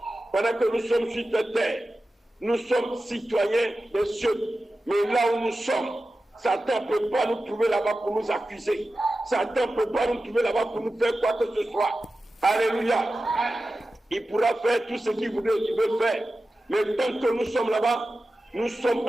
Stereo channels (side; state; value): both; normal; correlation 0.94